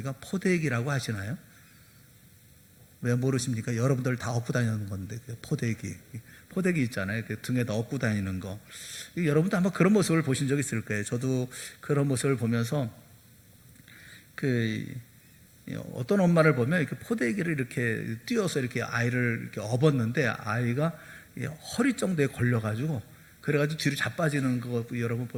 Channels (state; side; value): identical; both; correlation 1.00